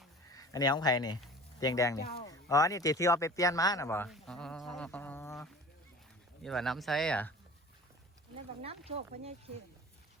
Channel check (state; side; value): normal; both; correlation 0.41